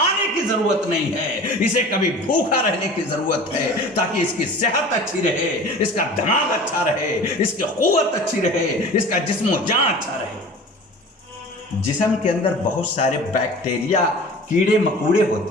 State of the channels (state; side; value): normal; both; correlation 0.40